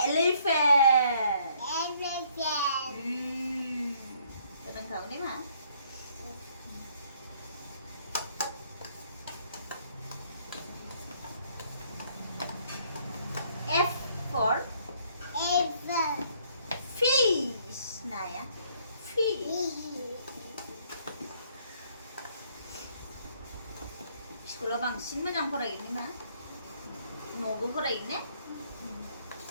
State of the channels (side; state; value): both; inverted; correlation -0.65